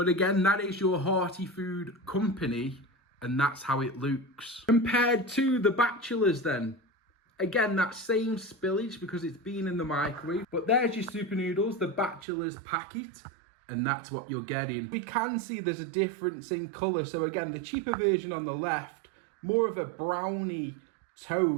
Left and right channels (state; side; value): drops out; left; at 12.2 s